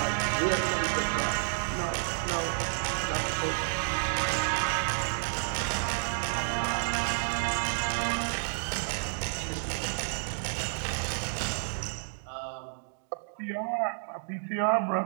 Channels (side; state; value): left; silent; digital silence